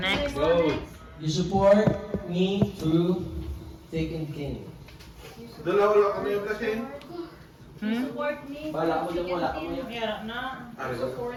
Go. You support me through thick and thin. Dalawa lang kami yung kasi. Support me. Bala mo lang, wala ka mo yan. Meron na.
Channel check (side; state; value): both; identical; correlation 1.00